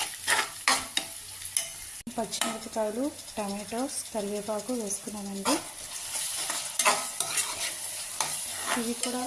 పచ్చిమిరపకాయలు, టమాటోస్, కరివేపాకు వేసుకున్నానండి. ఇవి కూడా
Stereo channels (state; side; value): identical; both; correlation 1.00